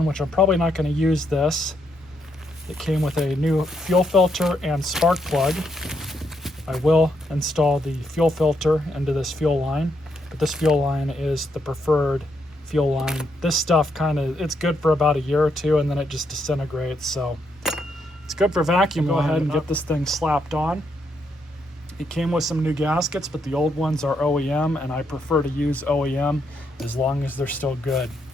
which I'm probably not going to use this. It came with a new fuel filter and spark plug. I will install the fuel filter into this fuel line, but this fuel line is the preferred fuel line. This stuff it's good for about a year or two, and then it just disintegrates, so it's good for vacuum. Go ahead and get this thing slapped on. It came with some new gaskets, but the old ones are OEM, and I prefer to use OEM as long as they're still good.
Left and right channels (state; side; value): normal; both; correlation 0.78